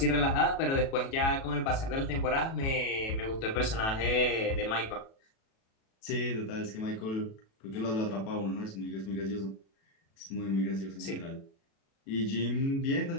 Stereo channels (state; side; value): late; right; 37 ms